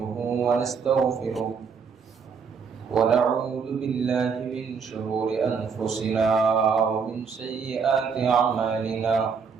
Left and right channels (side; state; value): left; quieter; 5.9 dB